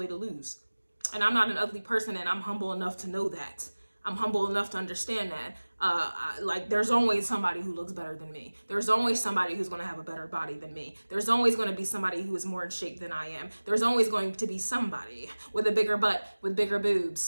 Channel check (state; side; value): inverted; both; correlation -1.00